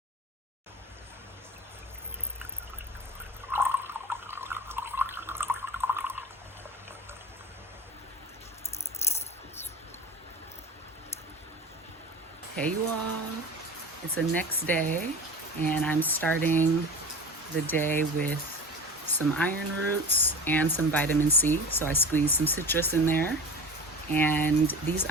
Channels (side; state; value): both; normal; correlation 0.33